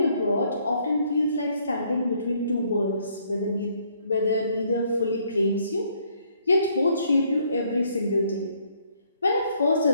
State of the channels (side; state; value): both; inverted; correlation -0.67